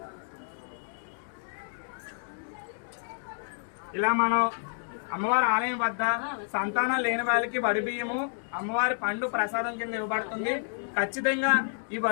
ఇలా మనం అమ్మవారి ఆలయం వద్ద సంతానం లేని వాళ్ళకి వడి బియ్యము అమ్మవారి పండు ప్రసాదం కింద ఇవ్వబడుతుంది. ఖచ్చితంగా ఈ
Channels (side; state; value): right; silent; digital silence